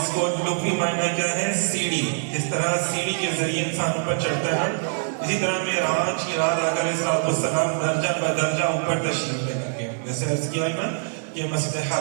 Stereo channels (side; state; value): left; silent; digital silence